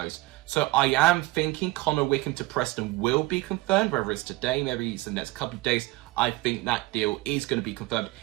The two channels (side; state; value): left; quieter; 20.1 dB